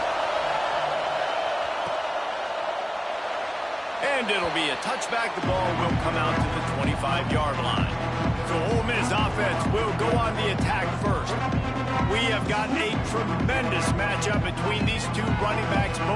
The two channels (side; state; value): both; identical; correlation 1.00